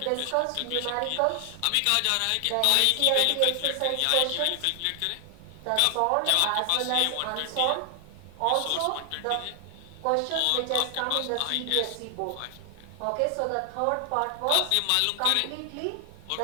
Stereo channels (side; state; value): both; different; correlation 0.00